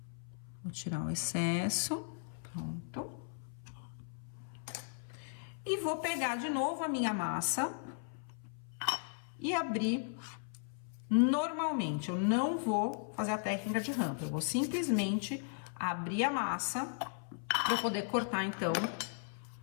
Vou tirar o excesso, pronto. E vou pegar de novo a minha massa e abrir normalmente. Eu não vou fazer a técnica de rampa, eu vou simplesmente abrir a massa para eu poder cortar, então.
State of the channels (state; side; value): silent; right; 53 dB below the other